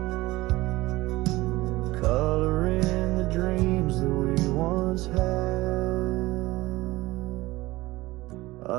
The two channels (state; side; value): quieter; left; 19.4 dB